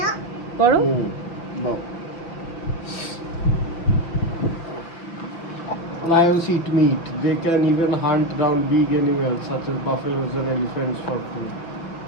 পড়ো। Lions eat meat. They can even hunt down big animals such as buffaloes and elephants for food.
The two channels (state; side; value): late; right; 5.6 ms